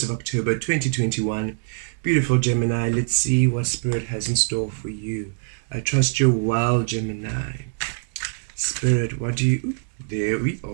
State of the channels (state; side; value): silent; left; 63 dB below the other